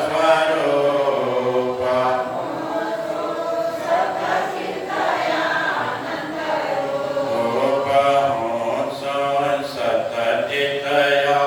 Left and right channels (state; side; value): identical; both; correlation 1.00